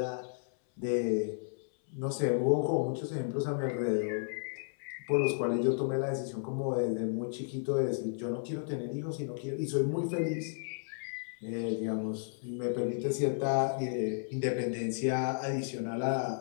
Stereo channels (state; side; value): silent; right; 56 dB below the other